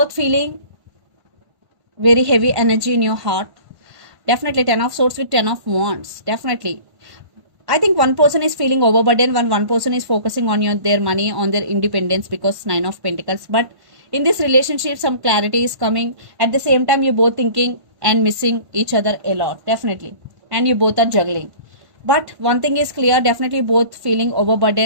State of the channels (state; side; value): late; left; 1.5 ms